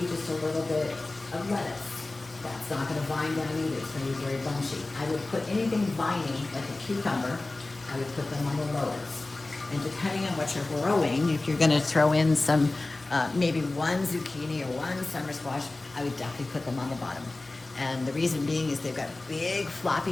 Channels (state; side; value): quieter; right; 3.0 dB